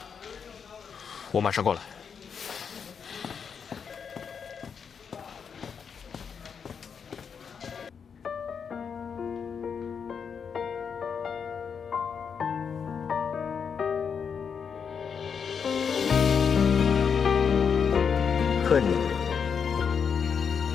我马上过来。恨你，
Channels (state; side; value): quieter; right; 6.6 dB